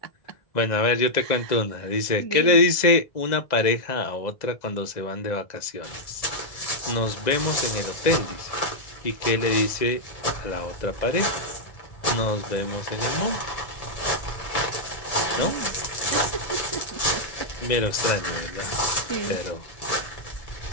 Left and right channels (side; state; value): right; late; 2.0 ms